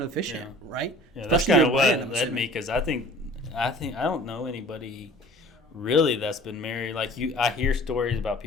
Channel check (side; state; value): both; normal; correlation 0.47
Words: officiant, right? Yeah, that's kind of what led me, because I think I don't know anybody really that's been married. Like I hear stories about